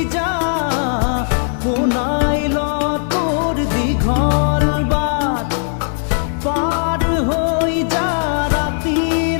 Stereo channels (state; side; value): silent; right; digital silence